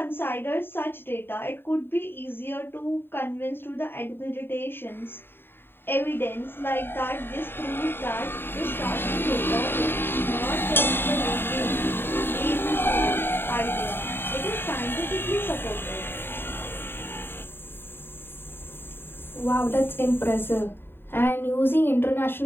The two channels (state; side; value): late; right; 0.10 ms